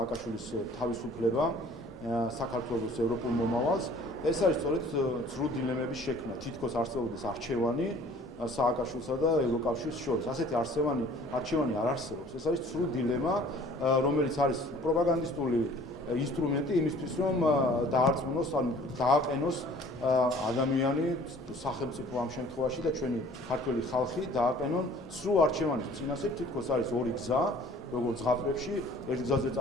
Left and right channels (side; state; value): both; normal; correlation 0.52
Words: თავისუფლება საქართველოს ევროპულ მომავალს. ეს არის სწორედ ცრუ დილემების შექმნა, თითქოს არსებობდეს არჩევანი სააკაშვილსა და ევროკავშირის შორის. ასეთი არჩევანი არ არსებობს. ეს არის ცრუ დილემა, რომელიც არის პროპაგანდისტული ინსტრუმენტი იმისთვის, რომ დაარწმუნოს, ანუ დააყენოს ადამიანი, სახელმწიფო ამ შემთხვევაში და ჩვენი ქართველი ხალხი დააყენონ ცრუ არჩევანის წინასწარ. თითქოს არის ორი გზა, როგორც ზღაპრებში, ერთ გზაზე